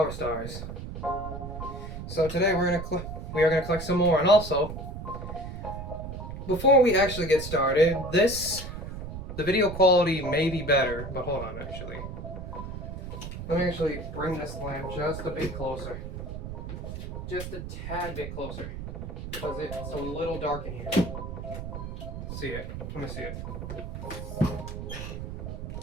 Stars. So today we are gonna collect some more, and also, before we actually get started, the video quality may be better, but hold on actually. Let me actually bring this lamp just a bit closer. Just a tad bit closer. Because it's a little dark in here. See it. Let me see it.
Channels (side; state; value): right; noise; rumble, 7 dB below the sound